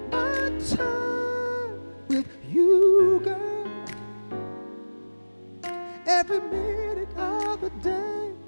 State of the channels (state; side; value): inverted; both; correlation -1.00